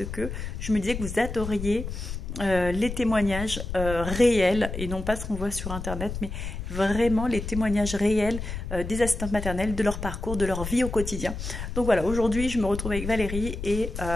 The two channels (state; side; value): noise; left; rumble, 7 dB below the sound